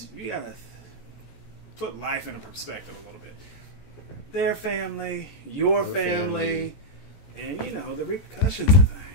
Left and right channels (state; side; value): late; right; 17 ms